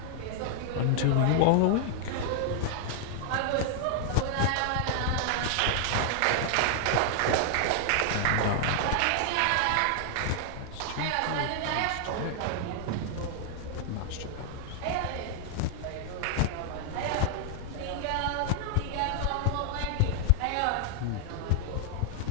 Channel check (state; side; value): different; both; correlation 0.00